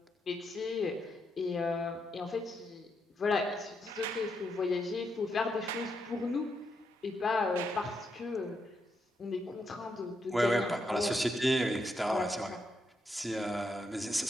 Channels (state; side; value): normal; both; correlation 0.81